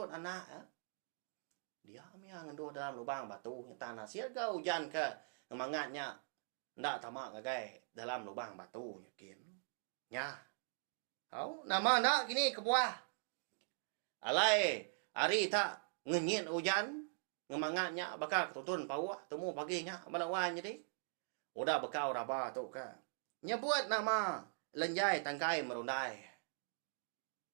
anak. Dia yang ngendut dalam lubang batu. Tanah siaga hujan ke ngemangatnya. Ndak tamak ngagai dalam lubang batu nyakin. Nya. Nama ndak gini kebuah. Alai hari tak ngenyit hujan. Ngemangatnya bakal ketutun pawah. Temu paginya melawan jadi. Udah bekau raba tu ke. Nyebut nama lenjai tangkai merundai.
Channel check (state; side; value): silent; left; digital silence